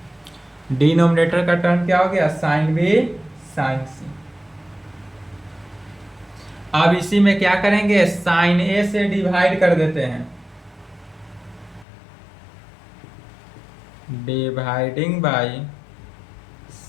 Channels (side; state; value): right; drops out; at 11.9 s